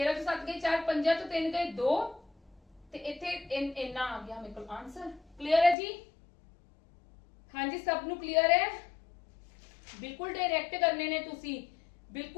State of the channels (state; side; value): drops out; right; at 5.8 s